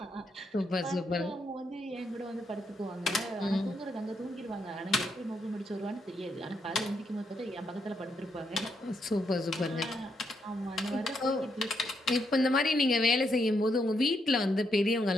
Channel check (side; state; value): both; normal; correlation 0.78